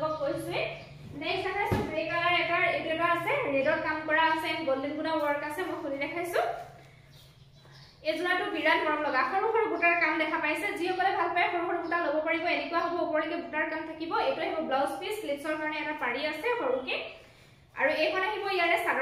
কৈছোৱে নেক্সট দেখাইছো গ্ৰে কালাৰ এটা আছে ৰেডত কাম কৰা আছে এন্ড গোল্ডেন গুনা ওয়াৰ্ক আছে মই খুলি দেখাইছো এজোৰাটো বিৰাট মৰম লগা সৰু সৰু বুটাৰ কাম দেখা পাইছে যিসকলে ভাল পায় সৰু সৰু বুটা ল'ব পাৰিব এনেকুৱা হ'ব ওপৰলৈকে বুটাৰ কাম থাকিব এটো আহিব ব্লাউজ পিস স্লিভছৰ কাৰণে এটা পাৰি আছে সৰুকে আৰু এইখন আহিব ইয়াৰে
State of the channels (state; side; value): identical; both; correlation 1.00